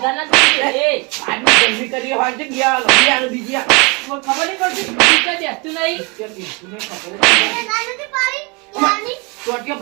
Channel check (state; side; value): quieter; left; 29.8 dB